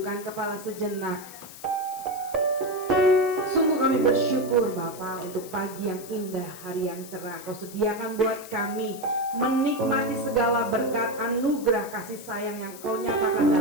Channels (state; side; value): noise; left; hiss, 16 dB below the sound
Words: kepala sejenak. Sungguh kami bersyukur Bapa untuk pagi yang indah, hari yang cerah. Kau sediakan buat kami menikmati segala berkat anugerah kasih sayang yang Kau nyatakan